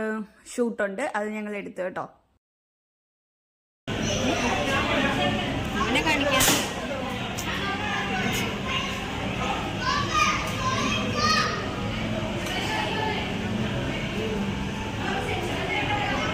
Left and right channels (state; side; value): identical; both; correlation 1.00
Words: ഷൂട്ടുണ്ട്. അത് ഞങ്ങൾ എടുത്തു കേട്ടോ.